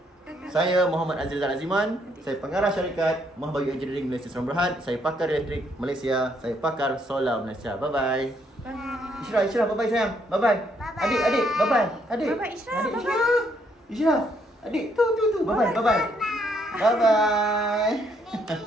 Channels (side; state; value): both; normal; correlation 0.71